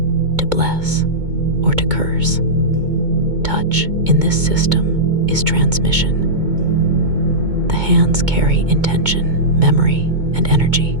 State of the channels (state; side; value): late; left; 2.2 ms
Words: to bless or to curse. Touch in this system is transmission. The hands carry intention, memory, and energy.